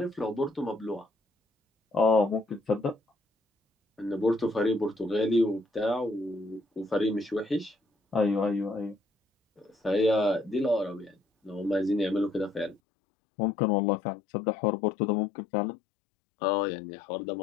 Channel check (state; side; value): drops out; right; at 12.8 s